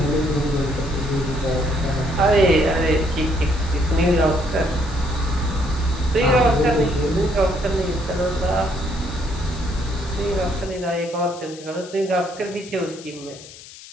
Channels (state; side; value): noise; left; hiss, 17 dB below the sound